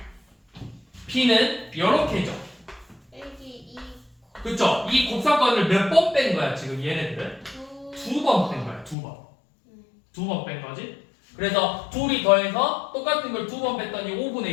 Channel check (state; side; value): drops out; right; at 9.0 s